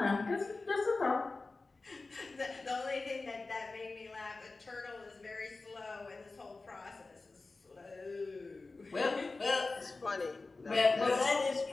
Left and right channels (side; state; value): right; quieter; 3.6 dB